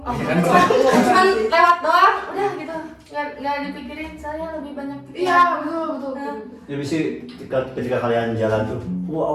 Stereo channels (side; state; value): both; identical; correlation 1.00